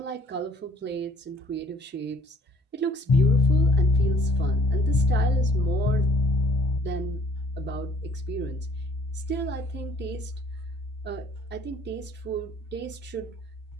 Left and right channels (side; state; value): both; normal; correlation 0.59